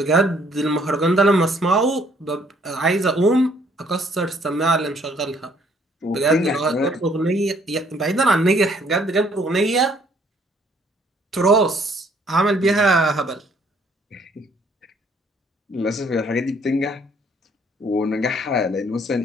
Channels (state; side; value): normal; both; correlation 0.63